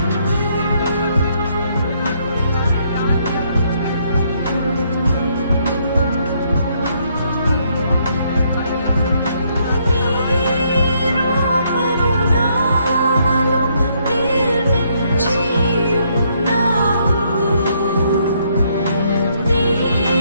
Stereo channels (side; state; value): both; inverted; correlation -0.71